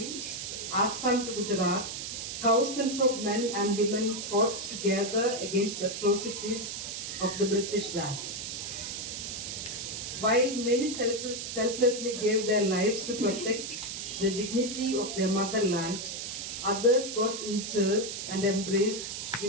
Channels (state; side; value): noise; right; hiss, 6 dB below the sound